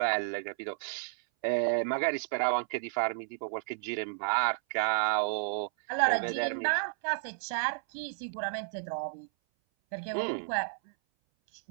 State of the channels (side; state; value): left; silent; 56 dB below the other